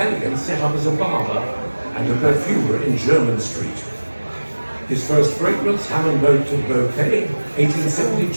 set up as a barber and a perfumer in Jermyn Street. His first fragrance, Hammond Boat to Bouquet,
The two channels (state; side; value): inverted; both; correlation -1.00